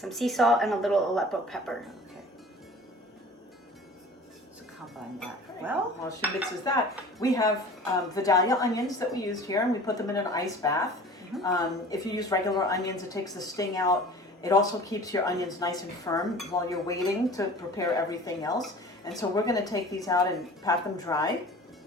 sea salt, and a little Aleppo pepper. Okay. So combine that. Well, while she mixes that, we have Vidalia onions that we used here, and we put them in an ice bath. If you use regular onions, it takes the sting out. It also keeps your onions nice and firm while you're waiting to prepare everything else. And so we're going to take these out and pat them dry.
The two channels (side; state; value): both; normal; correlation 0.43